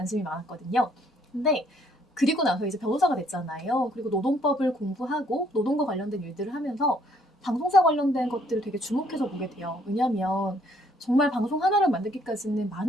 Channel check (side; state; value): both; normal; correlation 0.66